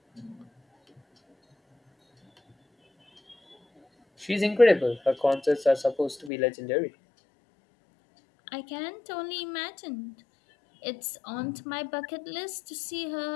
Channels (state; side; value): drops out; right; at 6.3 s